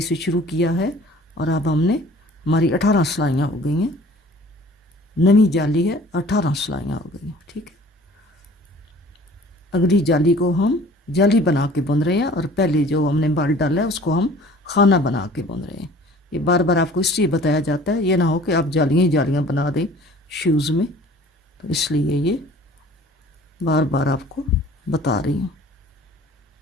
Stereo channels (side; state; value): both; normal; correlation 0.49